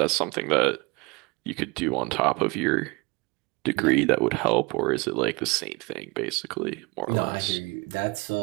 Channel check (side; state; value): left; quieter; 26.7 dB